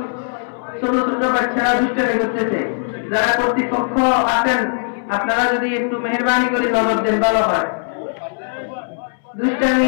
ছোট ছোট বাচ্চারা দুষ্টামি করতেছে। যারা কর্তৃপক্ষ আছেন আপনারা যদি একটু মেহেরবানি করে নজর দেন ভালো হয়।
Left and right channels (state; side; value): silent; right; 67 dB below the other